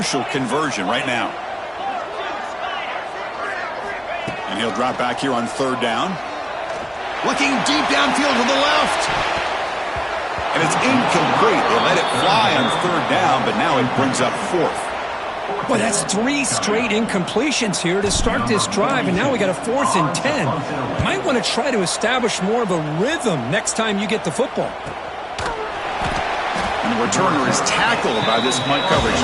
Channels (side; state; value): both; identical; correlation 1.00